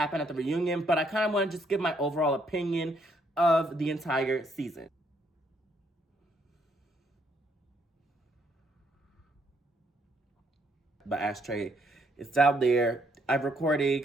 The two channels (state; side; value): normal; both; correlation 0.71